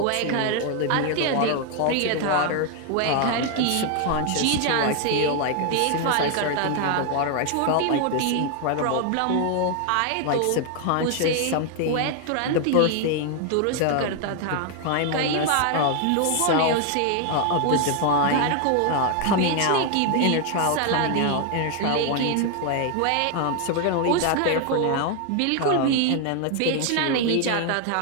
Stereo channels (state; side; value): different; both; correlation 0.00